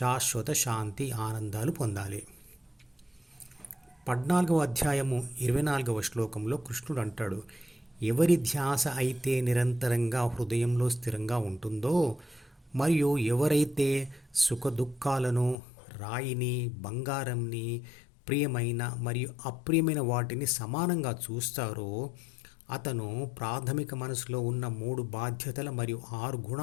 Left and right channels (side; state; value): right; drops out; at 15.6 s